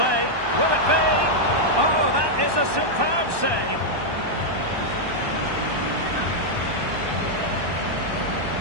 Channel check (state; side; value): late; left; 1.2 ms